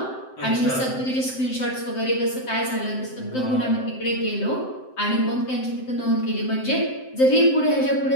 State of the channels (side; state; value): right; late; 7.7 ms